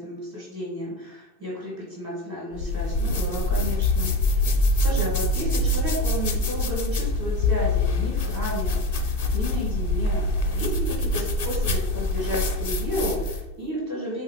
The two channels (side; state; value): left; late; 2.6 ms